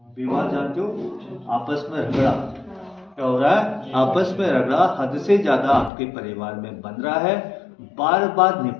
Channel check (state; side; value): drops out; right; at 5.9 s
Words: विवाद जानते हो? आपस में झगड़ा क्या हो रहा है? आपस में रगड़ा हद से ज्यादा आपके परिवार में बन रहा है। बार बार